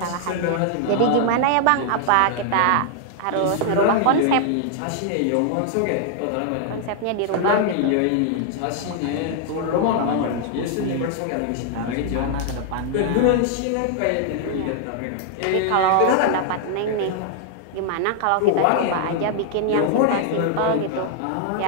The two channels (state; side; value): different; both; correlation 0.00